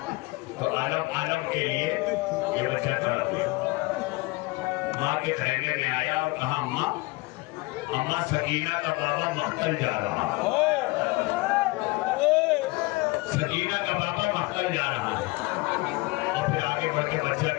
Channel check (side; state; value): right; quieter; 23.5 dB